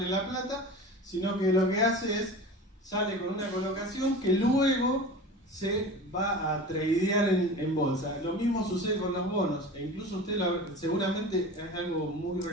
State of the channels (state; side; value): normal; both; correlation 0.35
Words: la plata, sino que lo que hace es sale con una colocación que luego se va a tradear en bolsa. Lo mismo sucede con los bonos, e incluso usted seguramente es algo muy